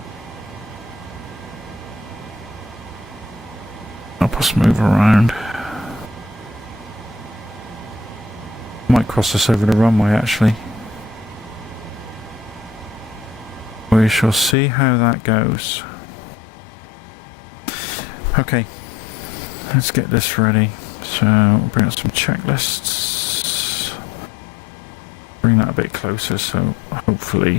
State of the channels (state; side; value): drops out; right; at 14.6 s